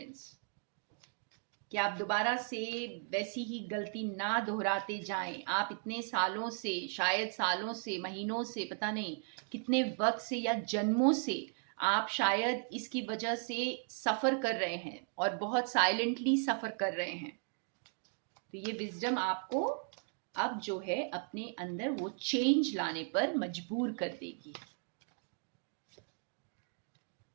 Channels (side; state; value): left; silent; 53 dB below the other